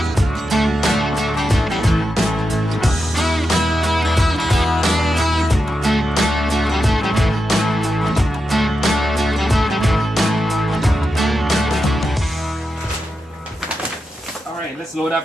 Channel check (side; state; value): both; normal; correlation 0.88